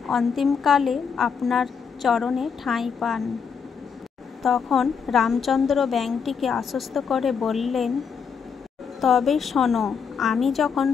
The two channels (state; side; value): quieter; right; 6.3 dB